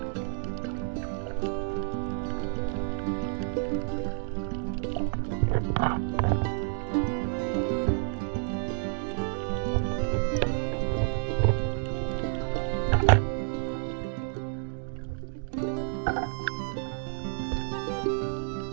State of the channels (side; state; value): left; silent; digital silence